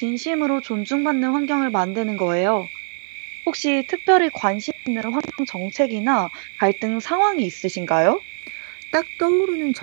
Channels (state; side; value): silent; left; digital silence